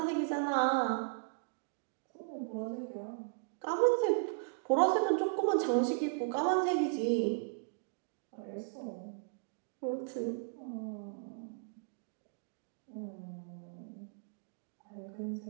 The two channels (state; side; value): silent; left; digital silence